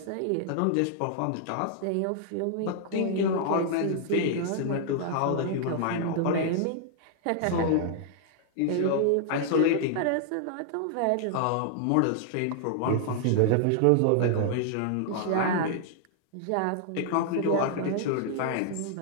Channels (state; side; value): different; both; correlation -0.01